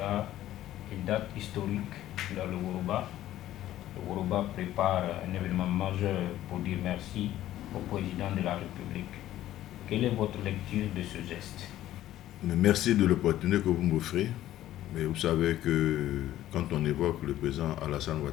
une date historique dans le Woroba. Le Woroba prépare un événement majeur pour dire merci au président de la République. Quelle est votre lecture de ce geste? Merci de l'opportunité que vous m'offrez. Mais vous savez que quand on évoque le président Alassane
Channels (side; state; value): right; quieter; 13.5 dB